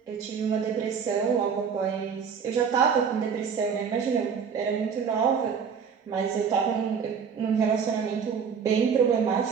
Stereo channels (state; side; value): quieter; left; 6.6 dB